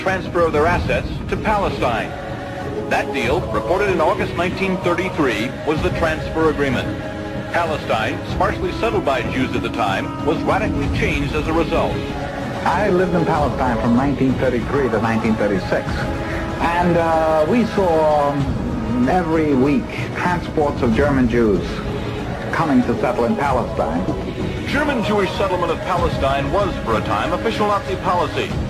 of their assets to Palestine. That deal, reported in August 1933, was the transfer agreement. Palestine, sparsely settled by Jews at the time, was radically changed as a result. I lived in Palestine from 1933 to 1936, and we saw every week transports of German Jews coming to settle in Palestine. German Jewish settlement of Palestine was, for a time, official Nazi policy.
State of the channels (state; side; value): identical; both; correlation 1.00